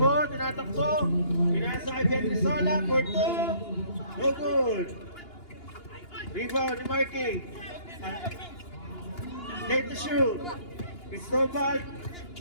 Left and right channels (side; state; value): right; late; 2.9 ms